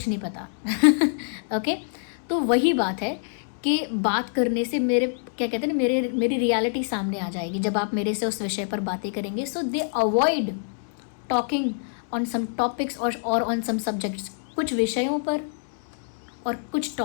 नहीं पता। ओके, तो वही बात है कि बात करने से मेरे क्या कहते हैं ना, मेरी रियलिटी सामने आ जाएगी जब आप मेरे से उस विषय पर बातें करेंगे। So they avoid talking on some topics और ऑन सम सब्जेक्ट्स। कुछ विषयों पर और कुछ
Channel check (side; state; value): right; silent; digital silence